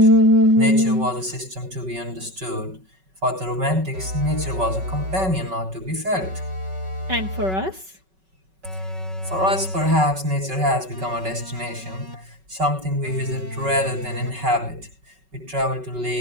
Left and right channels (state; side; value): late; left; 5.3 ms